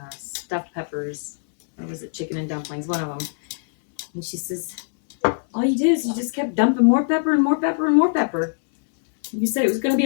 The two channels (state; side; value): silent; right; digital silence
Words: stuffed peppers. Or was it chicken and dumplings? One of them. And she says, all you did is you just kept dumping more pepper and more pepper and more pepper. You said it was going to be